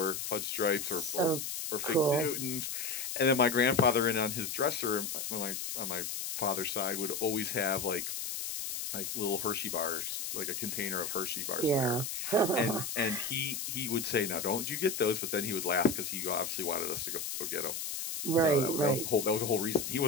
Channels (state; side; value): noise; left; hiss, 4 dB below the sound